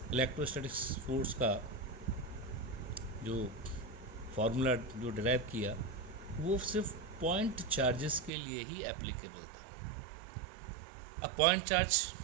इलेक्ट्रोस्टैटिक्स फोर्स का जो फार्मूला जो डिराइव किया, वो सिर्फ पॉइंट चार्जेस के लिए ही एप्लीकेबल था। अब पॉइंट चार्ज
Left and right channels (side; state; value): left; drops out; at 8.3 s